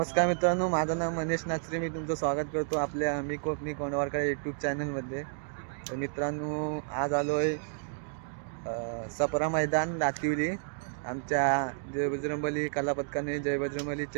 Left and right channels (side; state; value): left; silent; digital silence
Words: मित्रांनो, माझं नाव मनीष नाचरे. मी तुमचं स्वागत करतो आपल्या मी कोकणी कोंडवारकर यूट्यूब चॅनलमध्ये. तर मित्रांनो, आज आलो आहे सपरा मैदान दातिवली. आमच्या जय बजरंगबली कला पथकाने जय बजरंगबली